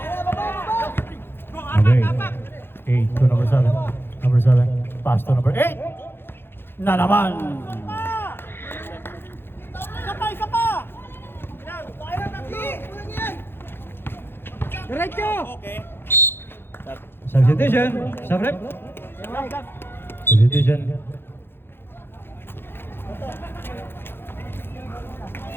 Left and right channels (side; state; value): right; late; 0.11 ms